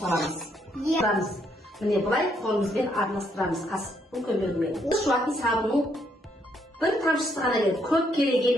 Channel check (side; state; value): both; normal; correlation 0.73